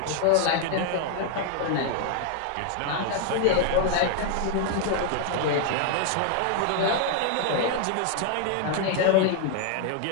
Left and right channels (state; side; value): different; both; correlation 0.00